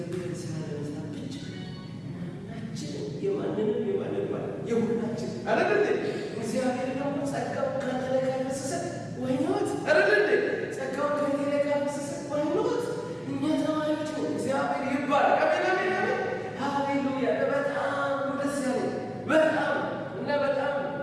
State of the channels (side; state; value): both; identical; correlation 1.00